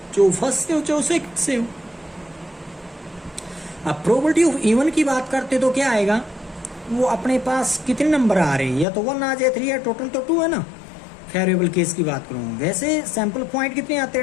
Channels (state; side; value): drops out; right; at 8.8 s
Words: जो फर्स्ट से हो चाहे सेकंड से हो। अब प्रोबेबिलिटी ऑफ इवन की बात करते तो क्या आएगा, वो अपने पास कितने नंबर आ रहे हैं, या तो 1 आ जाए 3 है, टोटल तो 2 है ना। फेवरेबल केस की बात करूँ, वैसे सैंपल पॉइंट कितने आते